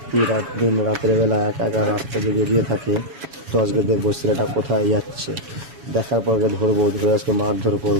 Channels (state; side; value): late; left; 7.1 ms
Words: দিন রাতের বেলা একা একা রাস্তা দিয়ে বেরিয়ে থাকে। তো আজকে দেখবো ছেলেটা কোথায় যাচ্ছে, দেখার পর ধরবো, ধরে আজকে মারধর